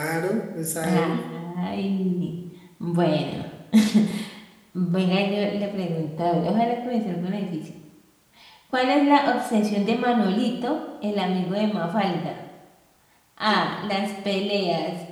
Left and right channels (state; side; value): identical; both; correlation 1.00